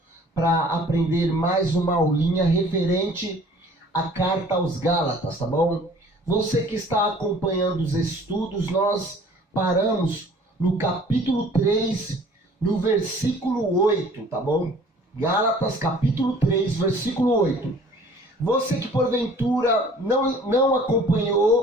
para aprender mais uma aulinha referente à carta aos Gálatas, tá bom? Você que está acompanhando os estudos, nós paramos no capítulo 3, no versículo 8, tá bom? Gálatas, capítulo 3, versículo 8. Você que porventura não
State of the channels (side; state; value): both; normal; correlation 0.52